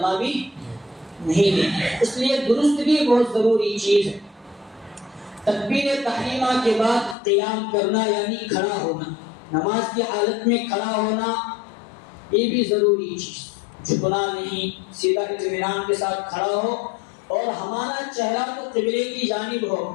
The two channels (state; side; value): drops out; right; at 7.2 s